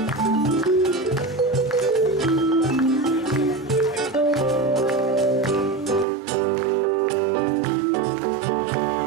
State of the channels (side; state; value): left; drops out; at 6.1 s